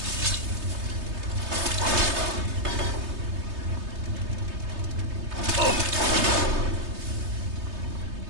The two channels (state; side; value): late; left; 3.2 ms